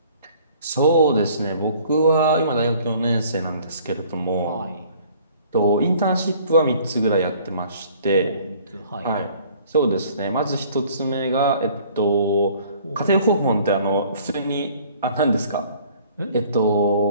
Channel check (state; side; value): inverted; both; correlation -0.55